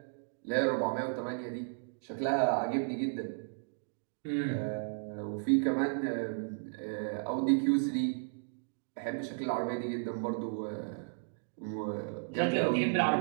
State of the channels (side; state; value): left; silent; digital silence